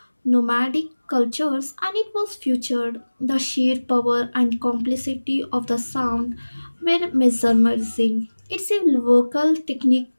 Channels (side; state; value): both; inverted; correlation -1.00